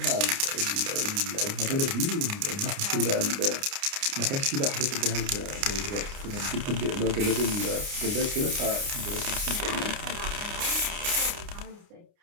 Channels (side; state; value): left; late; 29 ms